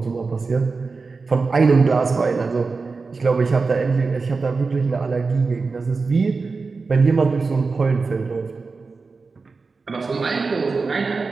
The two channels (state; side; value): quieter; left; 4.3 dB